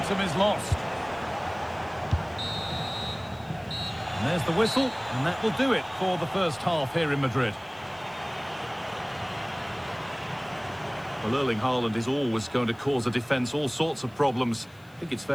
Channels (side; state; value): left; noise; hiss, 29 dB below the sound